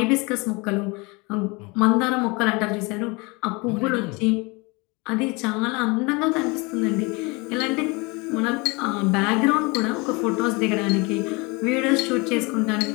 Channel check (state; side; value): quieter; right; 27.1 dB